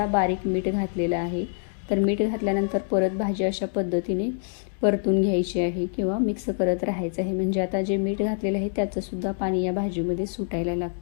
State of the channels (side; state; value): right; silent; digital silence